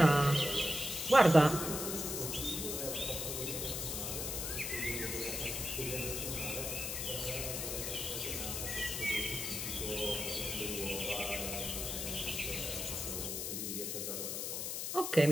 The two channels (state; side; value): noise; left; hiss, 3 dB below the sound